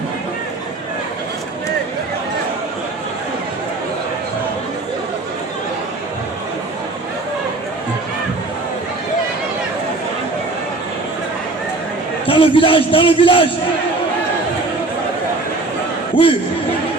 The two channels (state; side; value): quieter; left; 3.2 dB